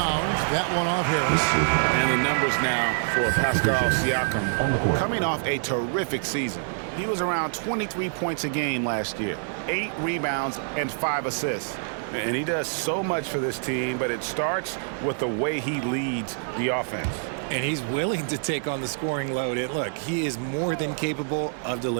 That one off Harris. And the numbers now for Pascal Siakam. Coming off a terrific season. He was around 23 points a game last year. 8 rebounds and 5 assists. And he does so much for this team, but it starts with the way he leads the offense. And he's willing to take on the scoring load. And look, he is more than capable of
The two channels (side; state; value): left; silent; digital silence